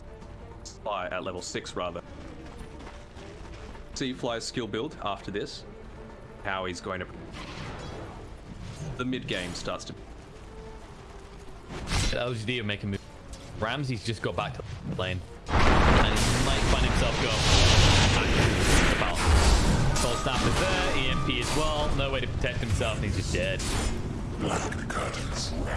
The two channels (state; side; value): identical; both; correlation 1.00